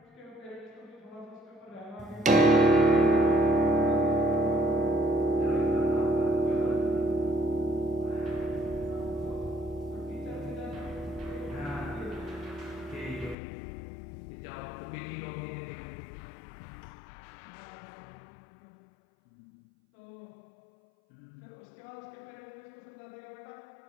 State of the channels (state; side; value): drops out; right; at 13.4 s